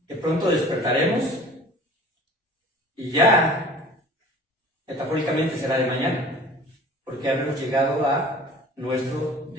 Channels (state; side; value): normal; both; correlation 0.45